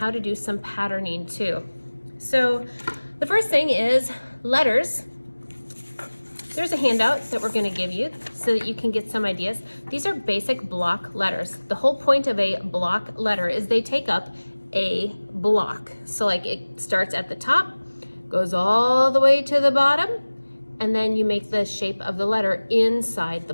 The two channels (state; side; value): inverted; both; correlation -1.00